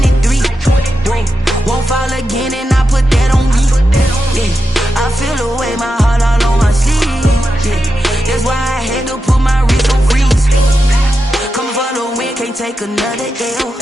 Won't fall again, and I put that on me. Yeah. I feel the way, my heart all on my sleeve. Yeah. That's why I had to put my wrist on freeze. Coming for the win, can't take another L.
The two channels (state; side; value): normal; both; correlation 0.89